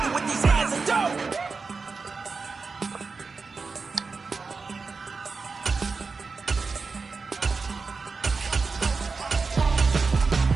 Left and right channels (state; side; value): quieter; left; 4.5 dB